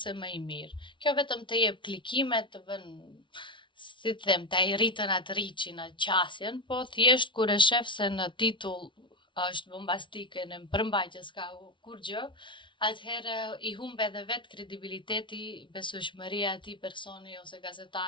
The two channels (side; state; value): right; late; 0.24 ms